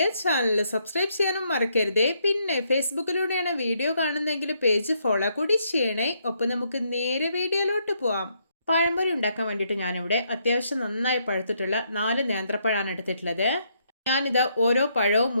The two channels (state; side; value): inverted; both; correlation -0.74